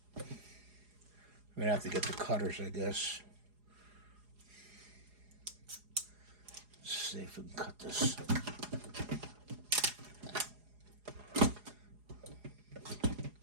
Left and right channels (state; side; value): late; left; 4.8 ms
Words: We're gonna have to get the cutters, I guess. Let's see if we can cut this.